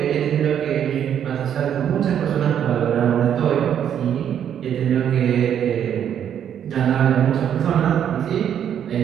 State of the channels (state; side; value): quieter; left; 9.3 dB